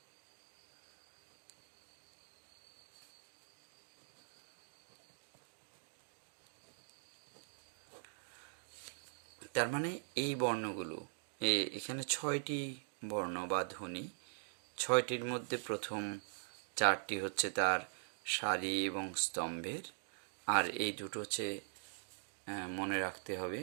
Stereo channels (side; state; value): left; silent; digital silence